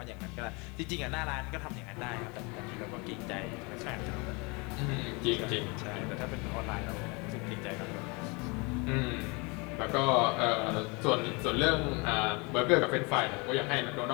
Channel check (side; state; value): right; quieter; 28.8 dB